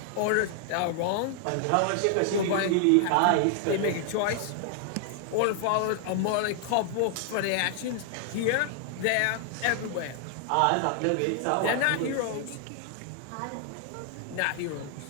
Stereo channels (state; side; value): different; both; correlation 0.00